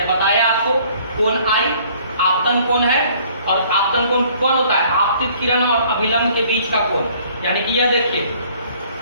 बताया आपको, कोण आई आपतन कोण है। और आपतन कोण कौन होता है? आपतित किरण और अभिलंब के बीच का कोण। यानी कि यह देखिए,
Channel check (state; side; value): inverted; both; correlation -0.58